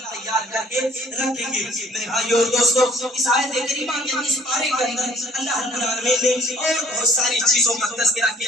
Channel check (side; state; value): both; normal; correlation 0.57